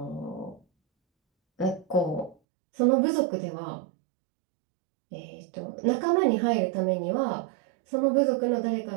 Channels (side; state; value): left; drops out; at 2.4 s